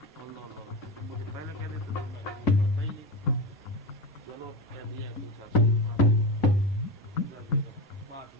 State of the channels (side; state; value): both; normal; correlation 0.20